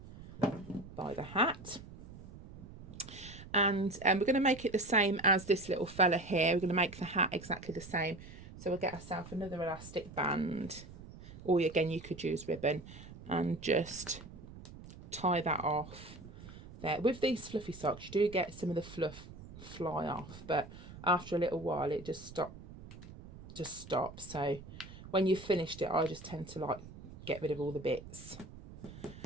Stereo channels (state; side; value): noise; right; rumble, 16 dB below the sound